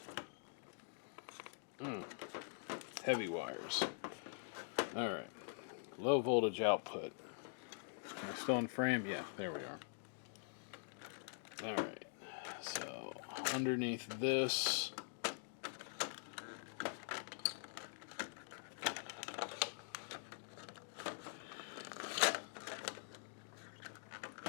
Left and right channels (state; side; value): silent; right; digital silence